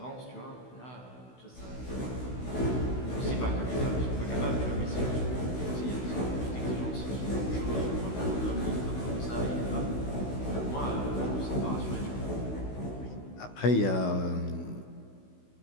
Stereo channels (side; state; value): right; late; 16 ms